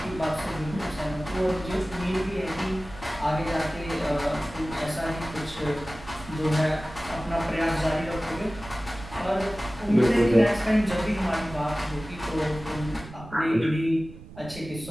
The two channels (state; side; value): noise; right; rumble, 16 dB below the sound